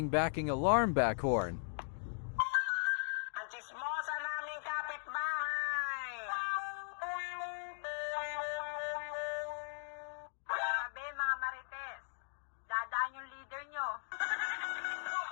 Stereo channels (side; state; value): right; silent; digital silence